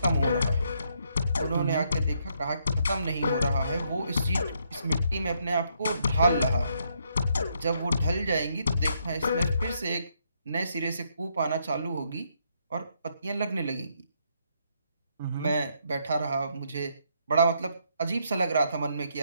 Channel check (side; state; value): both; inverted; correlation -0.74